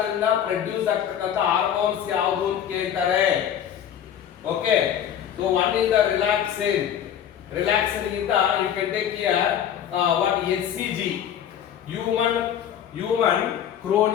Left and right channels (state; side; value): quieter; right; 9.6 dB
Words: ದಿಂದ produce ಆಗ್ತಕ್ಕಂತ hormones ಯಾವುದು ಅಂತ ಕೇಳ್ತಾರೆ. Okay, so one is the relaxin. Relaxin ಗಿಂತ you can take here what HCG, human